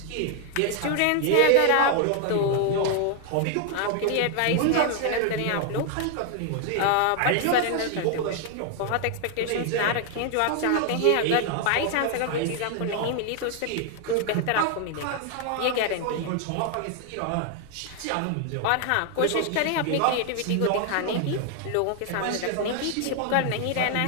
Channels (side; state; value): both; different; correlation 0.00